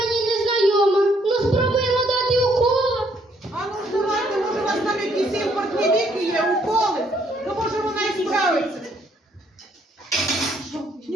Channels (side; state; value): both; normal; correlation 0.68